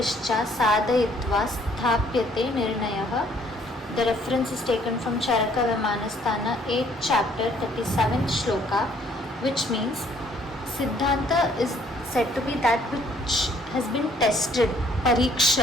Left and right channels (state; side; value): normal; both; correlation 0.63